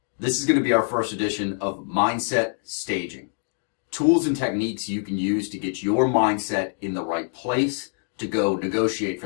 This is going to be our first edition of Mindset Staging. Tools and techniques you can use to get your mindset in the right place to go negotiate for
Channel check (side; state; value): right; silent; 62 dB below the other